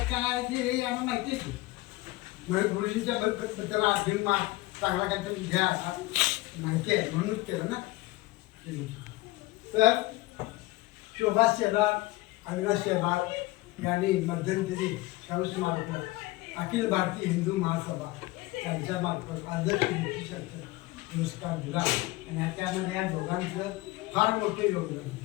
काय ते हे आम्हाला माहिती आहे. म्हणजे गुरुजींच्या बद्दल अभिमान चांगला काहीतरी घ्या माहिती आहे म्हणूनच केलं ना. तर शोभा शेलार अविनाश शेलार यांनी मध्यंतरी शाहू स्मारक अखिल भारतीय हिंदू महासभा यांच्या मार्फत आदर्श पुरस्कार दिला आणि त्यामध्ये या दोघांचं फार मोठे योगदान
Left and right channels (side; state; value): right; quieter; 19.9 dB